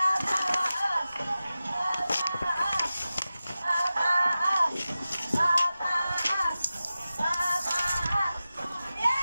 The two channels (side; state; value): both; inverted; correlation -0.94